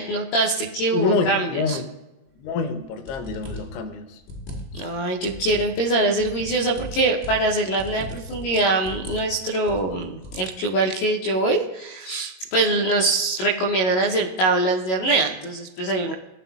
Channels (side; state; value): right; late; 22 ms